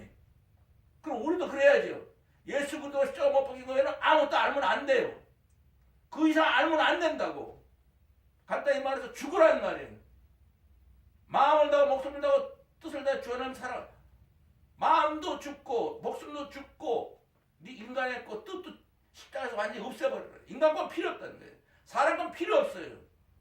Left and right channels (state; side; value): identical; both; correlation 1.00